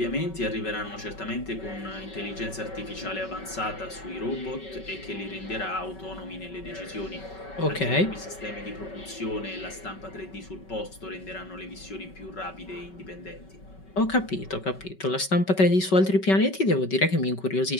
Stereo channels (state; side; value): late; right; 5.3 ms